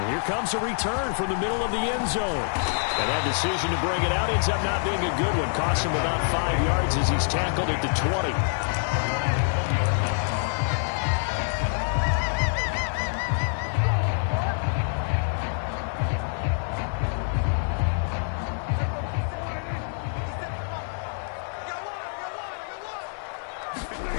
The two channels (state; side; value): silent; right; digital silence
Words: here comes a return from the middle of the end zone. And that decision to bring it out ends up not being a good one. Costs him about 5 yards as he's tackled at the 20.